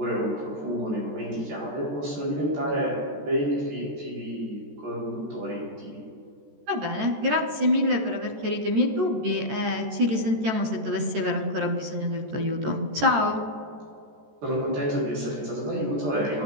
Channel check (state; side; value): late; left; 14 ms